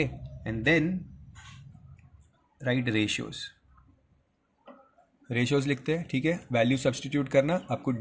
and then write ratios. Ratios लिखते हैं, ठीक है, value substitute करना, आपको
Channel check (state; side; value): identical; both; correlation 1.00